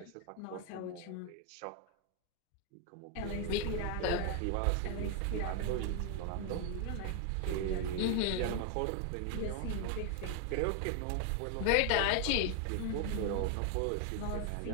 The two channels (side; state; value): both; different; correlation 0.01